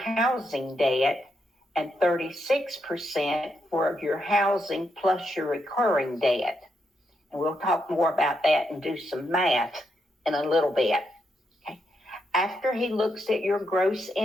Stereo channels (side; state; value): both; normal; correlation 0.81